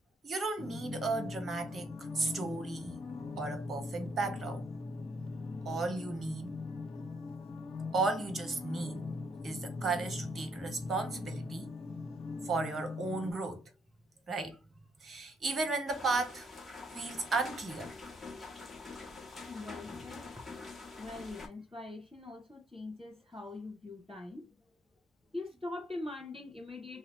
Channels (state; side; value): normal; both; correlation 0.72